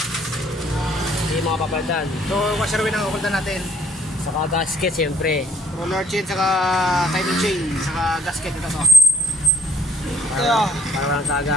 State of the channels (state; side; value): normal; both; correlation 0.64